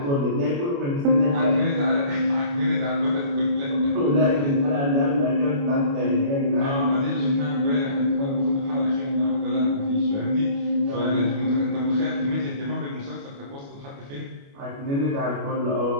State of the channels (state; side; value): late; left; 29 ms